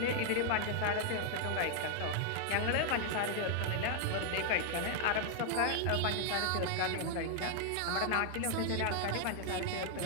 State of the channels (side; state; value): both; different; correlation 0.00